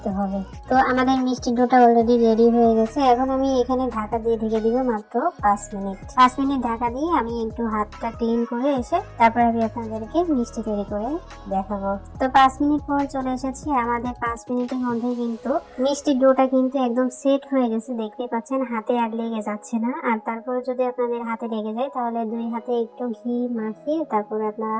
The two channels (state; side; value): identical; both; correlation 1.00